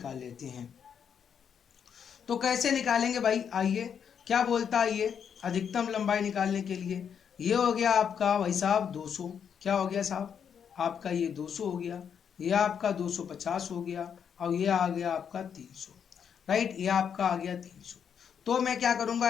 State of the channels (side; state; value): right; quieter; 7.7 dB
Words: लेते हैं। तो कैसे निकालेंगे भाई? आइए, क्या बोलता है ये अधिकतम लंबाई निकालने के लिए? ये हो गया आपका भाई साहब 200। क्या हो गया साहब? आपका ये 200 हो गया, ये आपका 250 हो गया, और ये आ गया आपका 300। राइट, ये आपका आ गया 300। तो मैं क्या